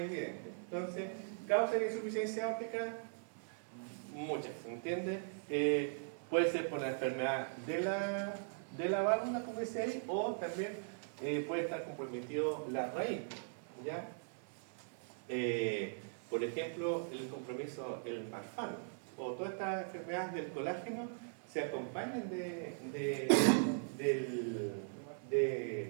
Entonces, causa de insuficiencia óptica, muchas, ¿se entiende? Puede ser por la enfermedad de la válvula, como dice ahí, o también puede estar comprometido la raíz, ¿ya? Por ejemplo, el compromiso, el marfan, o todas estas enfermedades del colágeno se acompañan de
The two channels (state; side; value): silent; left; 51 dB below the other